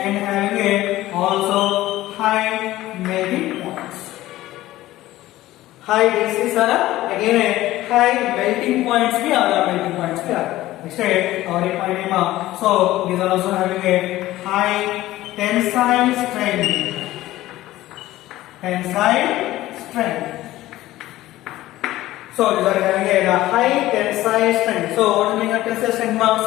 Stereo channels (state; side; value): quieter; right; 15.9 dB